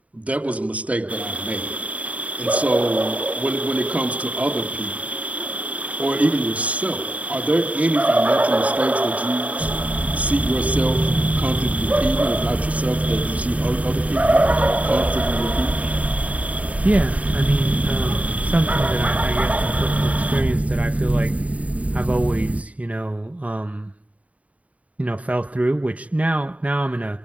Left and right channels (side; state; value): left; late; 0.068 ms